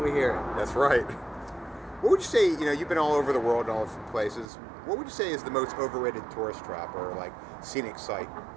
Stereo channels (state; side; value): drops out; left; at 4.5 s